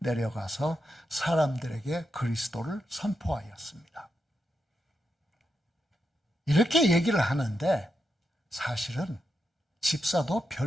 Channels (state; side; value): normal; both; correlation 0.85